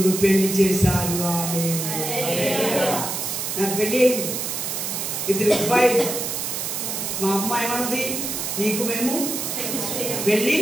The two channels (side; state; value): right; noise; hiss, 3 dB below the sound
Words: పెళ్లి చేశారు. నాకు పెళ్ళి అయింది. 2 అబ్బాయిలు. మా అమ్మ ఏమన్నది, నీకు మేము వెళ్ళి